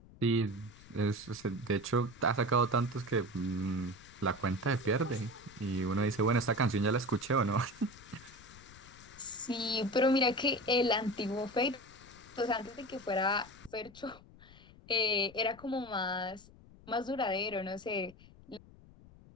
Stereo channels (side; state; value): left; noise; rumble, 22 dB below the sound